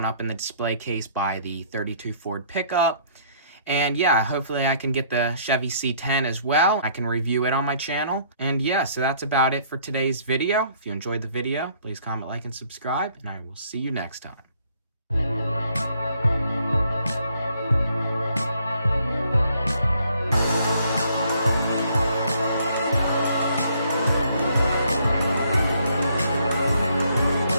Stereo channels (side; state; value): both; inverted; correlation -0.64